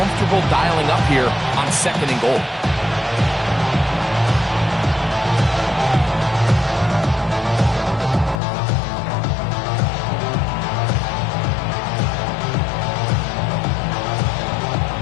dialing up here on 2nd and goal.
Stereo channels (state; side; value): drops out; right; at 8.4 s